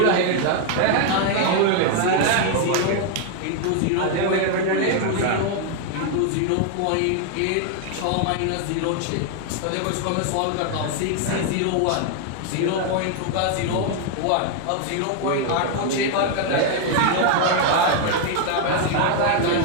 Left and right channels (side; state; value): both; different; correlation 0.00